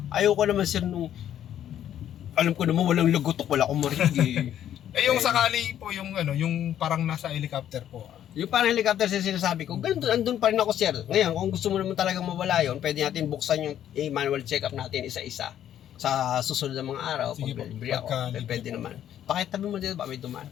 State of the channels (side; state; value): right; quieter; 10.7 dB